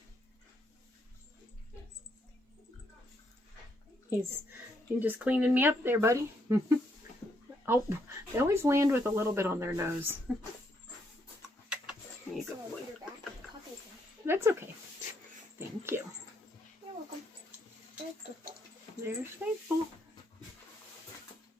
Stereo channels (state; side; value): normal; both; correlation 0.75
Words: He's just cleaning me up there, buddy. Oh, they always land with a little bit on their nose. There you go, boy. That's okay. Thank you. You're welcome. There's Faithful.